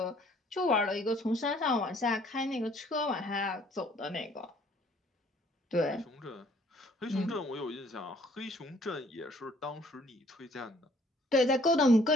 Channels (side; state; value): both; normal; correlation 0.60